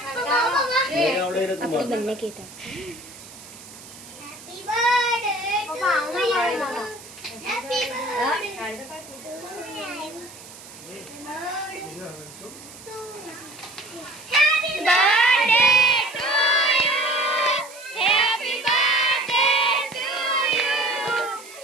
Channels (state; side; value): noise; right; hiss, 18 dB below the sound